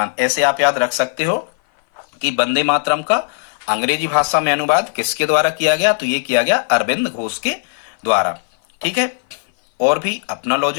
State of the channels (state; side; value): silent; right; 58 dB below the other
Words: ऐसे आप याद रख सकते हो कि वंदे मातरम का अंग्रेजी भाषा में अनुवाद किसके द्वारा किया गया? तो ये किया गया अरविंद घोष के द्वारा, ठीक है। और भी अपना